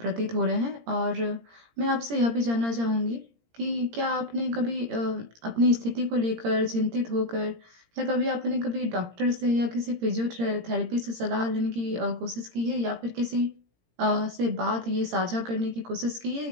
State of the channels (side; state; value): left; late; 17 ms